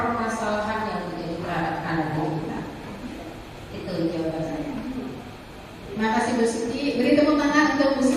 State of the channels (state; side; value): identical; both; correlation 1.00